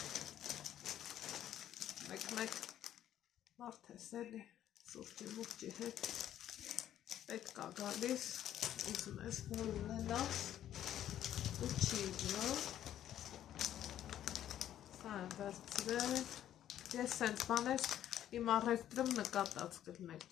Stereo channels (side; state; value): right; quieter; 11.4 dB